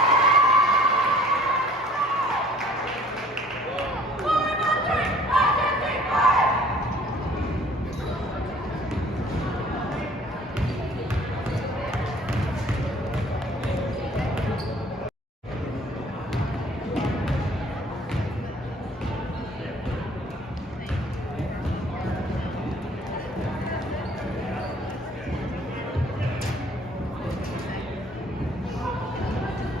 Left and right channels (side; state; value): both; normal; correlation 0.53